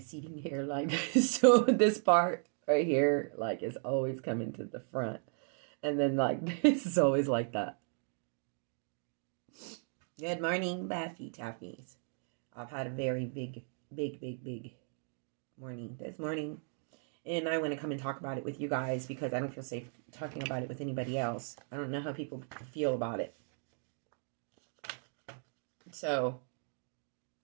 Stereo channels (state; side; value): silent; left; 54 dB below the other